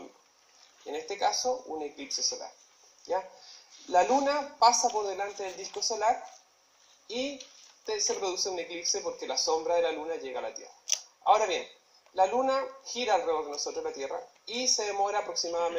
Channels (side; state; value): both; identical; correlation 1.00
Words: En este caso, un eclipse solar. ¿Ya? La Luna pasa por delante del disco solar y se produce un eclipse porque la sombra de la Luna llega a la Tierra. Ahora bien, la Luna gira alrededor de nosotros, la Tierra, y se demora